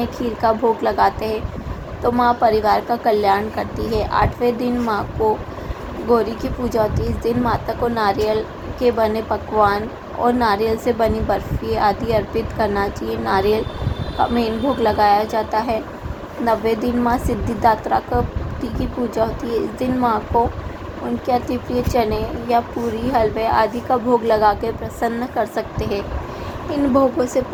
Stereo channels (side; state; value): both; identical; correlation 1.00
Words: खीर का भोग लगाते हैं तो माँ परिवार का कल्याण करती है। 8वें दिन माँ को गौरी की पूजा होती है। इस दिन माता को नारियल के बने पकवान और नारियल से बनी बर्फ़ी आदि अर्पित करना चाहिए। नारियल का मेन भोग लगाया जाता है। 9वें दिन माँ सिद्धिदात्रा की पूजा होती है। इस दिन माँ को उनके अति प्रिय चने या पूरी, हलवे आदि का भोग लगा के प्रसन्न कर सकते हैं। इन भोगों से